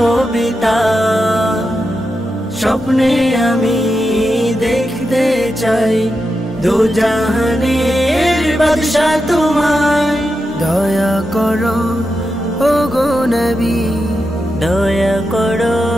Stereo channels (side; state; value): both; normal; correlation 0.88